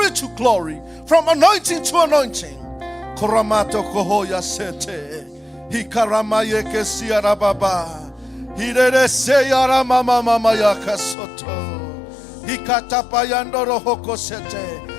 to glory, from anointing to anointing. Koramato kohoya sete. Hikaramaye kesiara baba. Hirere seyara mama mama yakasoto. Hikatapayandoro hoko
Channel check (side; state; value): right; drops out; at 11.2 s